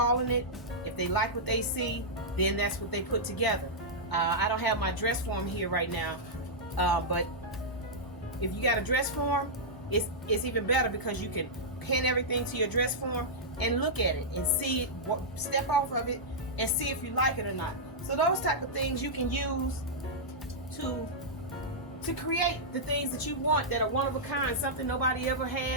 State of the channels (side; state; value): both; normal; correlation -0.10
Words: it. If they like what they see, then that's what they put together. I don't have my dress form here right now, but if you got a dress form, it's even better, because you can pin everything to your dress form and look at it and see it, step off of it and see if you like it or not. So those type of things you can use to create the things that you want, that are one of a kind, something nobody ever